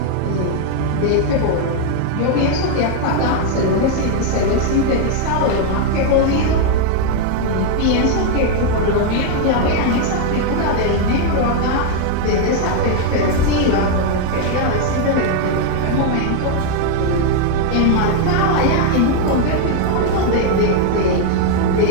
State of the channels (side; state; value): both; different; correlation 0.00